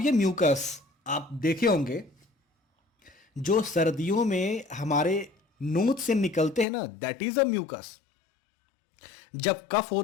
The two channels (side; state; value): right; drops out; at 6.7 s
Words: ये म्यूकस आप देखे होंगे जो सर्दियों में हमारे नोज से निकलते हैं ना, दैट इज अ म्यूकस। जब कफ